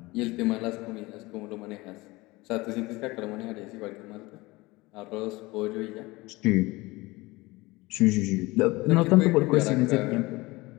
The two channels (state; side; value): quieter; right; 21.7 dB